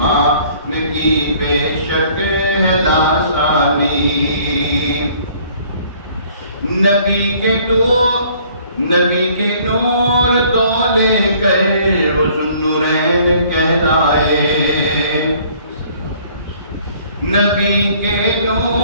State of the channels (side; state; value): both; inverted; correlation -0.58